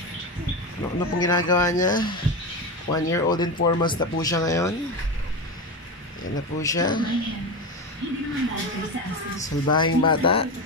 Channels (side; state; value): both; normal; correlation 0.19